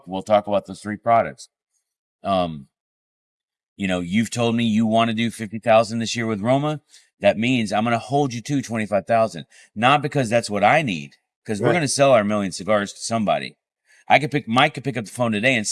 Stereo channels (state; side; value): identical; both; correlation 1.00